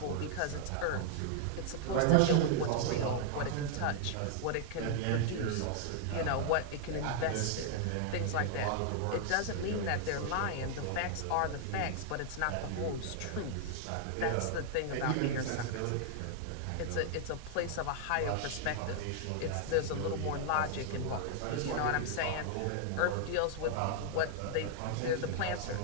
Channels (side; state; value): both; different; correlation -0.01